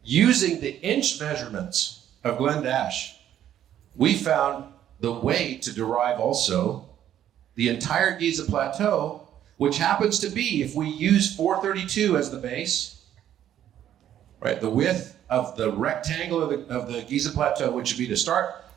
using the inch measurements of Glenn Dash, we found the way to derive also the entire Giza Plateau, which happens to be, if we use 432 as the base, right, the width of the rectangle of the Giza Plateau, which would be to start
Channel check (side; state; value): left; quieter; 11.0 dB